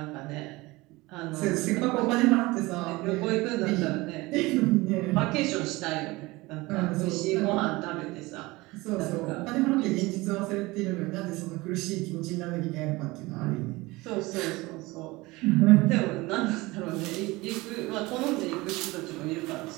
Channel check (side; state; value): left; quieter; 21.6 dB